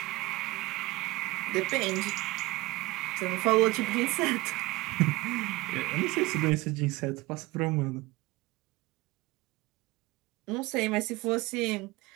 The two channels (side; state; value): left; quieter; 21.3 dB